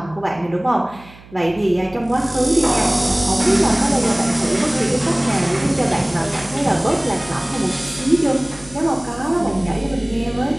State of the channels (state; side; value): noise; right; hum, 22 dB below the sound